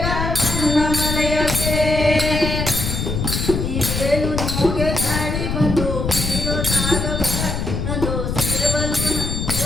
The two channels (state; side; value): noise; left; rumble, 2 dB below the sound